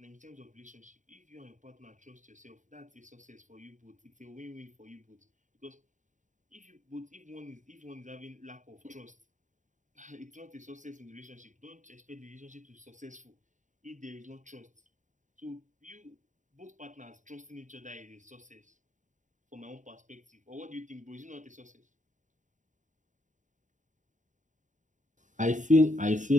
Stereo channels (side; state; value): left; late; 0.36 ms